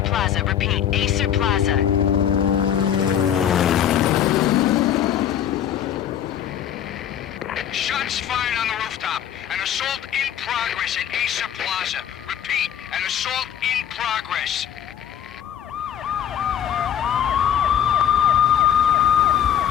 Plaza. Repeat, Acer Plaza. Shots fired on the rooftop. An assault in progress at Acer Plaza. Repeat, an assault in progress.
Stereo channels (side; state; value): right; quieter; 9.8 dB